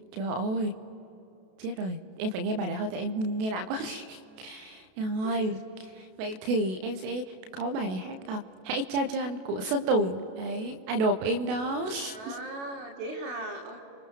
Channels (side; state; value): left; late; 32 ms